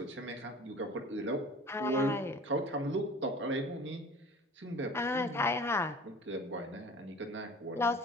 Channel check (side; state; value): both; normal; correlation 0.43